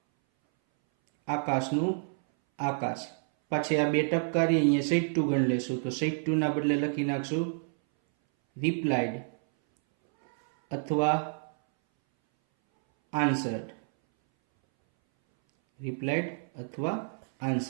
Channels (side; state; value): left; silent; 59 dB below the other